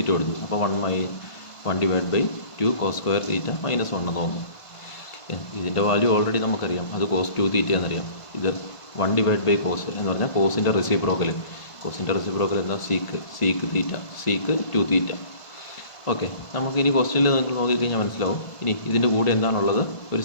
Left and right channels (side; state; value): right; late; 1.5 ms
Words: കൊടുത്തു. അപ്പോൾ 1/2 cos square θ - 1 എന്ന് തോന്നും. ഇതിൻ്റെ വാല്യൂ ഓൾറെഡി നമുക്കറിയാം. അത് cos 2θ എന്നറിയാം. ഇത് 1/2 cos എന്ന് പറഞ്ഞാൽ കോസിൻ്റെ റെസിപ്രോക്കൽ. കോസിൻ്റെ റെസിപ്രോക്കൽ എന്താ? Sec θ, sec 2θ. ഓക്കെ, നമുക്കിനി ക്വസ്റ്റ്യനിൽ നിങ്ങൾ നോക്കിക്കഴിഞ്ഞാൽ മനസ്സിലാവും. ഇനി ഇതിൻ്റെ കൂടെ എന്താണുള്ളത്? ഒരു